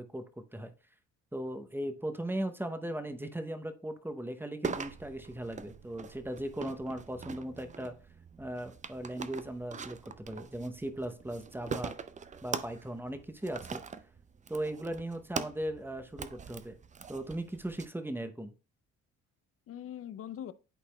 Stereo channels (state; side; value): normal; both; correlation 0.76